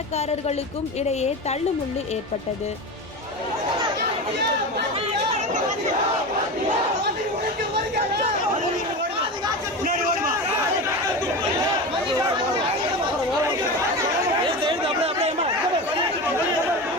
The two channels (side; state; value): both; normal; correlation 0.25